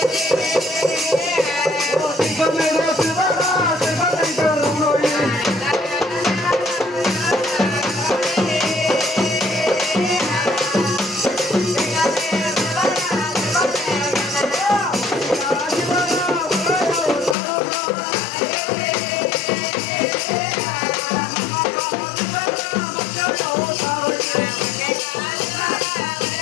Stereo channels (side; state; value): right; drops out; at 17.4 s